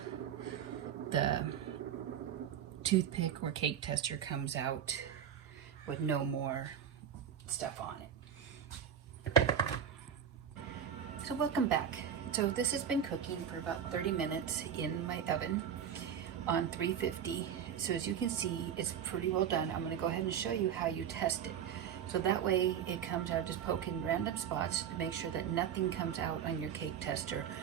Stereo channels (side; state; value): left; quieter; 8.5 dB